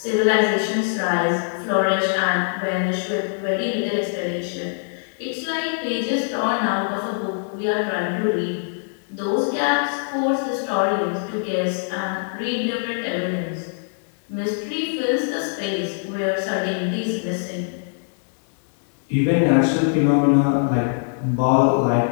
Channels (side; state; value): right; silent; digital silence